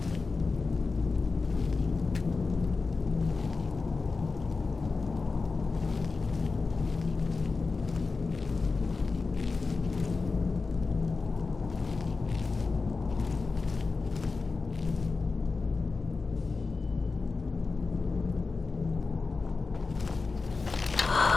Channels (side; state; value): right; quieter; 4.2 dB